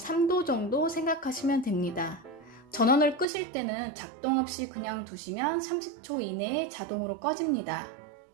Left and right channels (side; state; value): left; drops out; at 3.2 s